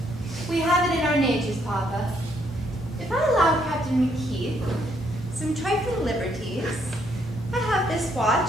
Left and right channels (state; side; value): normal; both; correlation 0.71